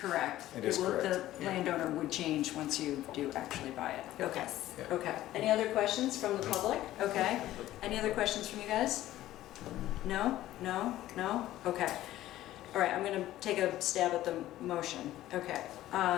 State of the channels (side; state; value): right; quieter; 14.5 dB